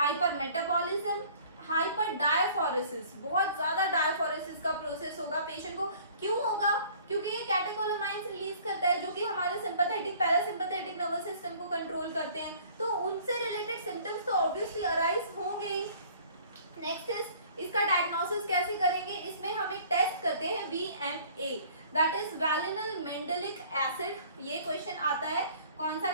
hyper diaphoresis, बहुत ज्यादा डायफोरेसिस का प्रोसेस होगा पेशेंट को। क्यों होगा, क्योंकि ये कैटेकोलामाइंस रिलीज करता है जो कि हमारे सिंपैथेटिक पैरासिम्पैथेटिक नर्वस सिस्टम को कंट्रोल करते हैं, तो उनसे रिलेटेड सिम्टम्स तो ऑब्वियसली अराइज होंगे ही। नेक्स्ट इज इसका डायग्नोसिस कैसे करेंगे, इसमें हम एक टेस्ट करते हैं VMA, दैट इज वैलिनल मेंडेलिक एसिड। ये क्वेश्चन आता है, कौन सा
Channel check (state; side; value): inverted; both; correlation -0.52